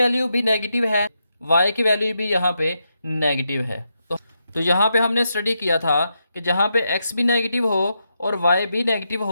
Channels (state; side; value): inverted; both; correlation -0.83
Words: भी नेगेटिव है वाई की वैल्यू भी यहाँ पे नेगेटिव है। तो यहाँ पे हमने स्टडी किया था कि जहाँ पे एक्स भी नेगेटिव हो और वाई भी नेगेटिव